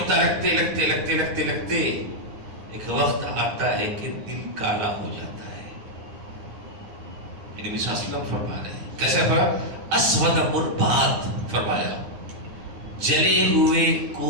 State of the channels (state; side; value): late; left; 10 ms